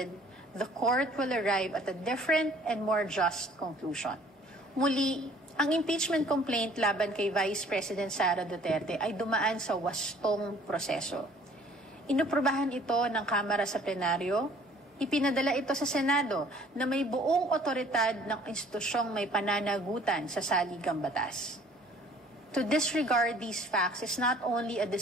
the court will arrive at a different and more just conclusion. Muli, ang impeachment complaint laban kay Vice President Sara Duterte ay dumaan sa wastong proseso. Inuprubahan ito ng Kamara sa plenaryo, ipinadala ito sa Senado na may buong otoridad ng institusyong may pananagutan sa saligang batas. To disregard these facts is not only a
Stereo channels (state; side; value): normal; both; correlation 0.55